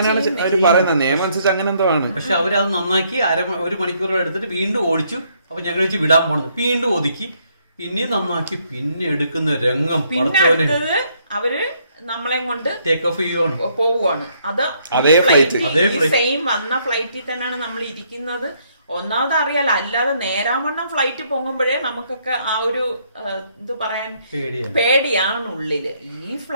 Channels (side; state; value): both; inverted; correlation -0.70